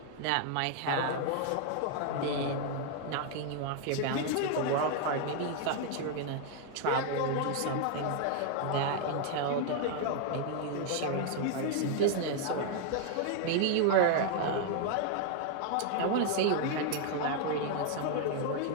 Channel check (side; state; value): both; different; correlation 0.00